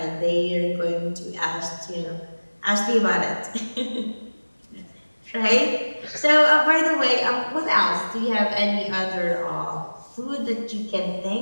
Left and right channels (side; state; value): both; inverted; correlation -1.00